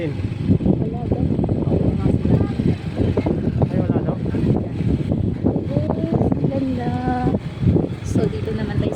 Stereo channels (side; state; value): both; identical; correlation 1.00